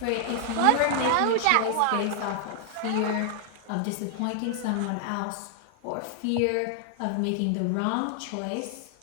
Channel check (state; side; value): different; both; correlation 0.00